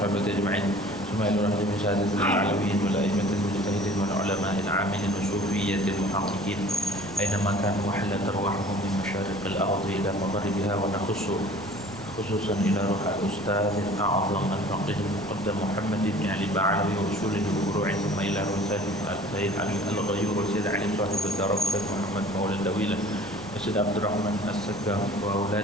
ajma'in. Thumma ila rahmatihi sa'adatil alawiyyin wal a'immatil mujtahidin wal ulama'il 'amilin wa sufiyyatil muhaqqiqin. Aynama kanu wa halat arwahuhum min masyariqil ardi ila magharibiha wa nakhussu خصوصا إلى روح الأستاذ الأعظم الفقيه المقدم محمد بن علي بعلوي وأصوله وفروعه ثم إلى روح السيد علي الغيور وسيد علي صاحب الدرجة محمد مولى الدويلة وسيد عبد الرحمن السقا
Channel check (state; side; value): noise; right; rumble, 18 dB below the sound